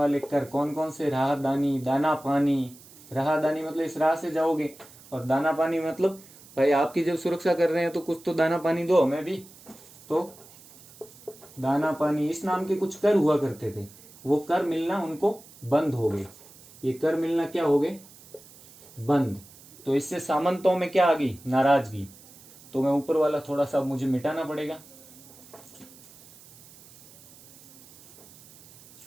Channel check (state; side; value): noise; right; hiss, 22 dB below the sound